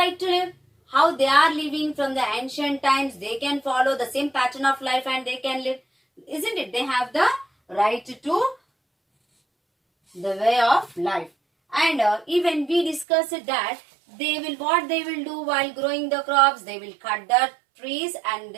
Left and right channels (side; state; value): left; drops out; at 13.1 s